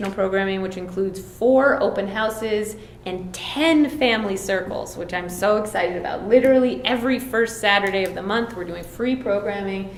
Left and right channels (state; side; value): identical; both; correlation 1.00